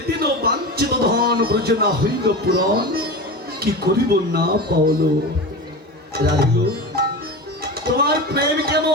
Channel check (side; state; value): both; normal; correlation 0.26